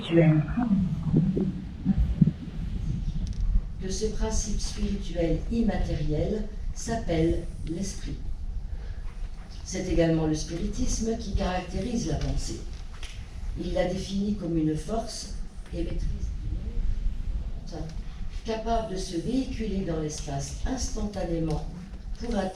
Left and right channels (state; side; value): identical; both; correlation 1.00